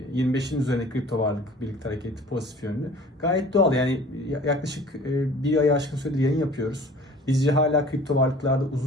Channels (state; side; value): normal; both; correlation 0.47